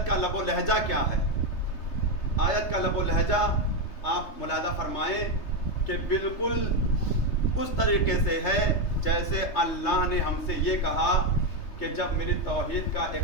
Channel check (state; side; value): late; right; 3.3 ms